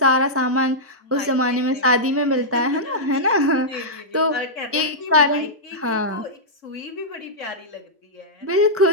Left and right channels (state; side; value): normal; both; correlation -0.10